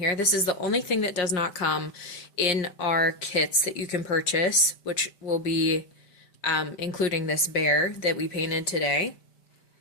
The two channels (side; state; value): right; late; 5.1 ms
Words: This is the only thing that does not come in our kits that you can purchase, which will be including this bear that we painted today.